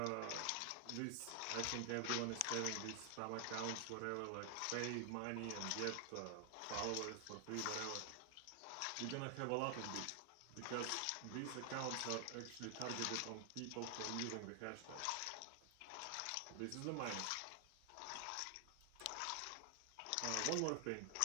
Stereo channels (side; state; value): both; different; correlation 0.00